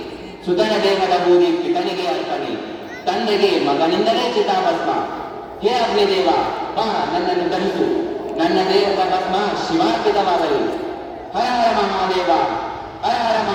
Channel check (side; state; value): both; identical; correlation 1.00